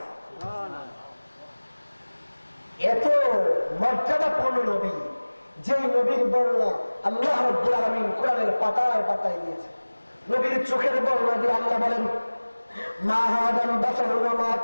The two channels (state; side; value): inverted; both; correlation -1.00